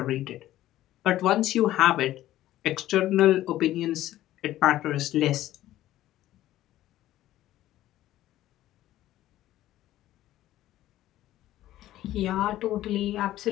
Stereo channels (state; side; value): quieter; right; 14.2 dB